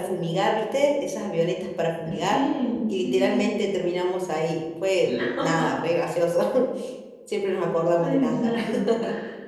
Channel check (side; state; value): both; identical; correlation 1.00